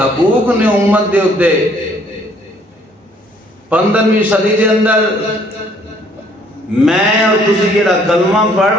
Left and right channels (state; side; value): normal; both; correlation 0.62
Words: نے امت دے اتے 15ویں صدی دے اندر میں اور تسی جیڑا کلمہ پڑھ